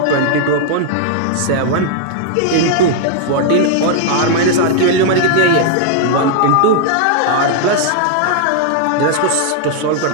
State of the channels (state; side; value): different; both; correlation -0.01